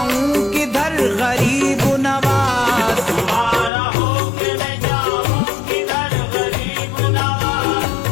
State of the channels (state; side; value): drops out; right; at 3.7 s